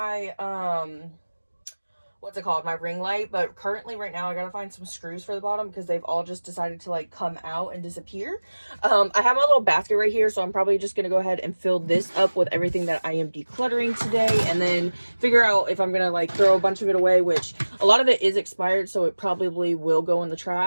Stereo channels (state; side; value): inverted; both; correlation -1.00